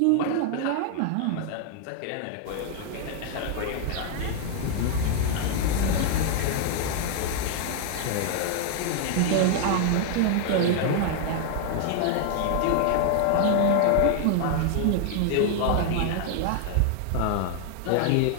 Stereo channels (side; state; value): both; different; correlation 0.00